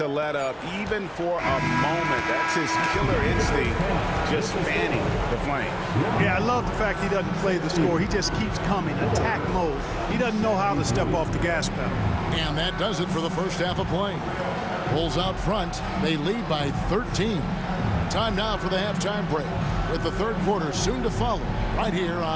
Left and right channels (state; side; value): identical; both; correlation 1.00